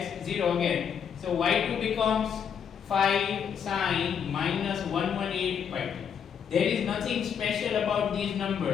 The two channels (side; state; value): right; quieter; 7.6 dB